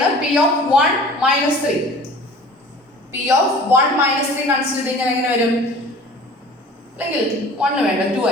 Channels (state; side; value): normal; both; correlation 0.44